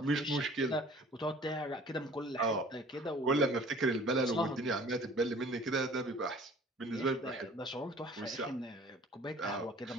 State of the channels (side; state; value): both; normal; correlation 0.49